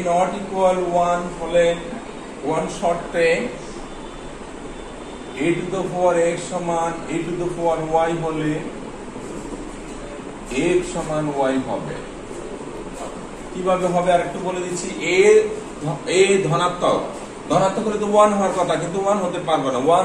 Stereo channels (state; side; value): identical; both; correlation 1.00